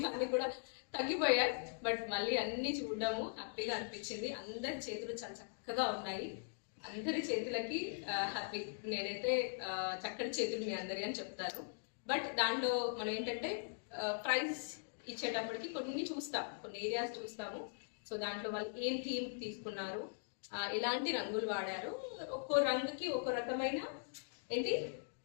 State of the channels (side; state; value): right; silent; digital silence